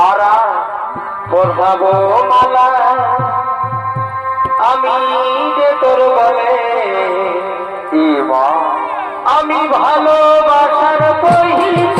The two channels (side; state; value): both; identical; correlation 1.00